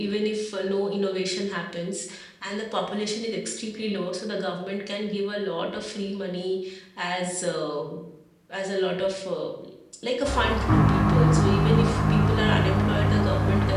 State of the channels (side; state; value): both; identical; correlation 1.00